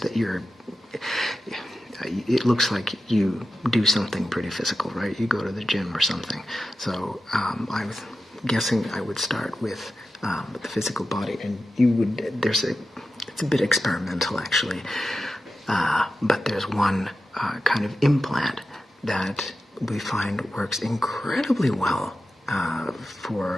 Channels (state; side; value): normal; both; correlation 0.92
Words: that it looks like you do something pretty physical, right? You go to the gym or something. So I was guessing I would start with the physical body, and it's a bit experimental actually, but there's one kind of implant that we find works incredibly well